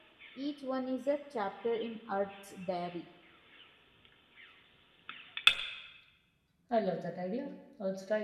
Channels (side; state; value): both; identical; correlation 1.00